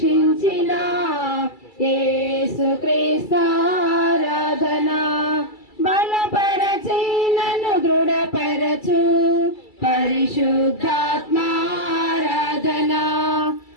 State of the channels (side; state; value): right; late; 2.3 ms